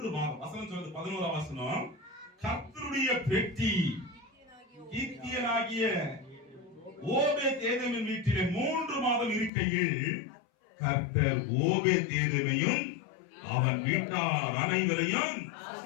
மாதம். வசனம் சொல்றது 11ஆம் வசனம். கர்த்தருடைய பெட்டி கீத்தியனாகிய ஓபேத்தேதுவின் வீட்டிலே 3 மாதம் இருக்கையில் கர்த்தர் ஓபேத்தேதுவையும் அவன் வீட்டார் அனைவரையும்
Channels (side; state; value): right; drops out; at 9.5 s